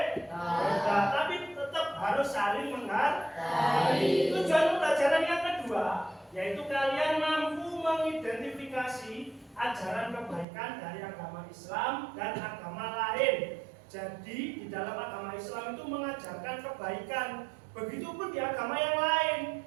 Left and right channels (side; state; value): left; drops out; at 10.5 s